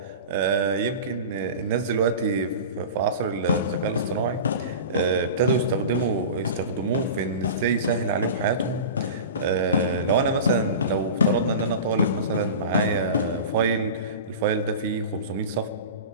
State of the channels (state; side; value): inverted; both; correlation -0.32